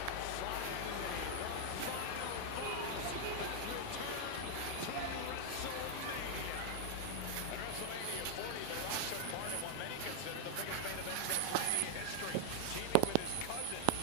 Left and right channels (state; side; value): different; both; correlation 0.00